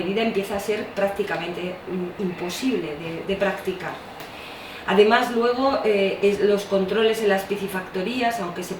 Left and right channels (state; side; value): identical; both; correlation 1.00